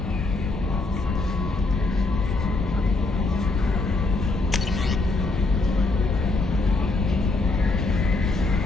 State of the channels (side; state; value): right; quieter; 3.3 dB